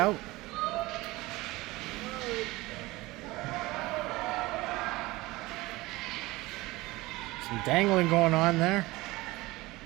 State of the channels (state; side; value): quieter; left; 20.3 dB